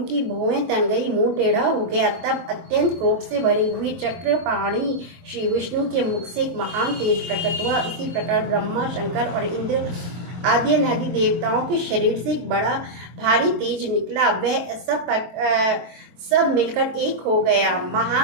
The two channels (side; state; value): left; late; 23 ms